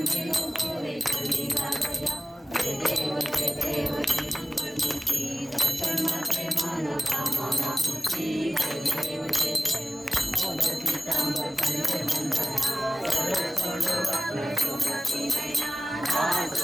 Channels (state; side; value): normal; both; correlation 0.96